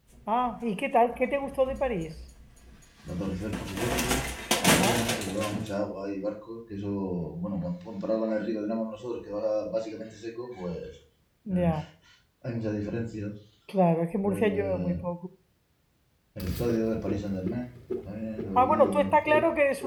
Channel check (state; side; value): identical; both; correlation 1.00